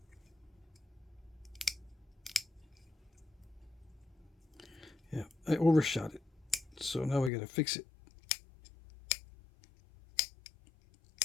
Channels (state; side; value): drops out; right; at 7.3 s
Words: Yeah, I overshot it. So now we got to fix it.